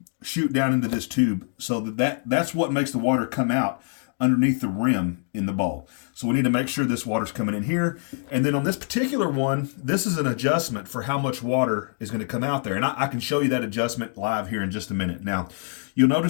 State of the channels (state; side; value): silent; right; 58 dB below the other